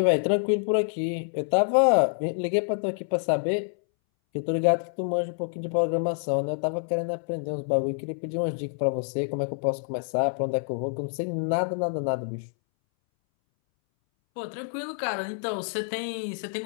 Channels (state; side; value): silent; right; 60 dB below the other